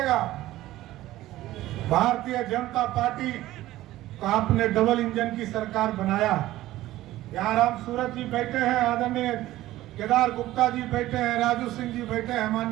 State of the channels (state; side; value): quieter; left; 15.6 dB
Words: भारतीय जनता पार्टी को आपने डबल इंजन की सरकार बनाया। यहाँ राम सूरत जी बैठे हैं, आदरणीय केदार गुप्ता जी बैठे हैं, राजू सिंह जी बैठे हैं,